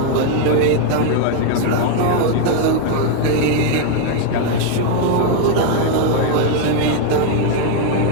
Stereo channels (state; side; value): different; both; correlation 0.01